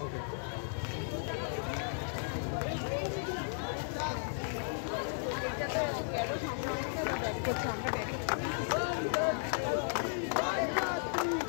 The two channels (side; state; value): right; silent; 54 dB below the other